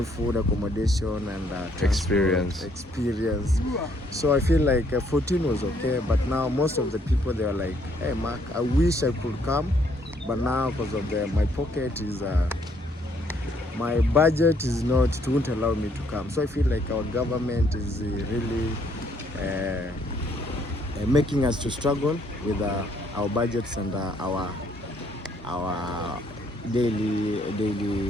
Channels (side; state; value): both; normal; correlation 0.68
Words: food, accommodation, and Experience. Experience. So I feel like 14 was okay, but now most of the people, they are like, "Hey, Mark, I wish I could come, but now because of my pocket is, my budget is not, it won't allow me to come." So I feel like our government is really making us to struggle with our budgets and our daily